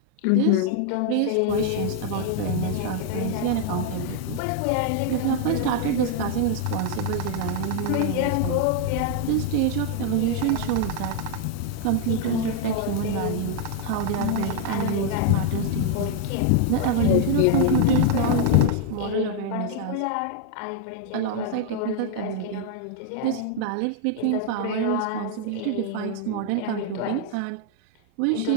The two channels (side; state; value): both; different; correlation 0.00